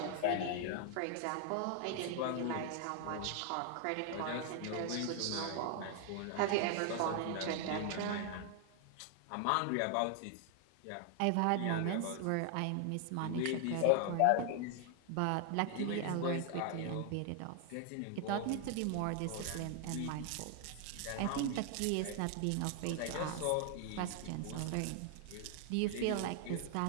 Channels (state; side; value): different; both; correlation 0.00